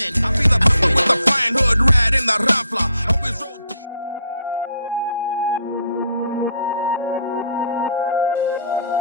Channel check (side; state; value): both; inverted; correlation -0.66